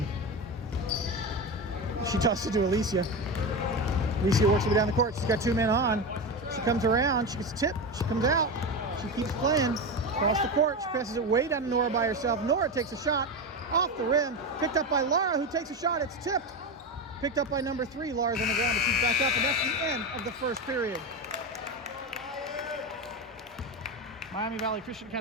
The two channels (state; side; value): normal; both; correlation 0.19